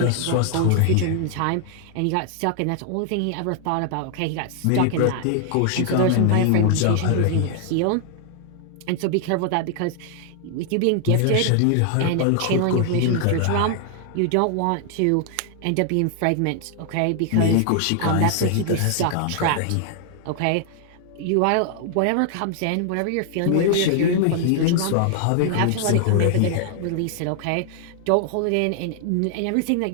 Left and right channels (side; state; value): both; different; correlation 0.00